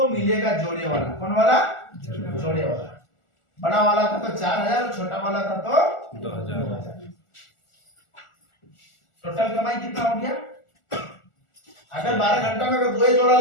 मिलेगा जोड़े वाला। कौन वाला? जोड़े वाला। बड़ा वाला था तो 4,000 और छोटा वाला था तो 2000। टोटल कमाई कितना हो गया? अगर 12 घंटा में अगर दो जोड़ा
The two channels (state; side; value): late; right; 1.4 ms